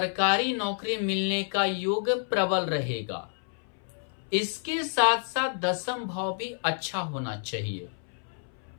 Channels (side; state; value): right; silent; 58 dB below the other